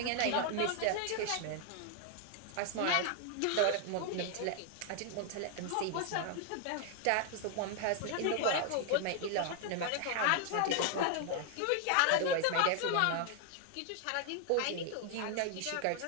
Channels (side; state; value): both; different; correlation 0.00